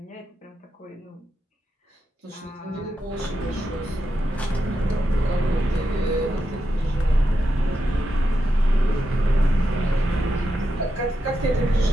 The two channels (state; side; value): normal; both; correlation 0.86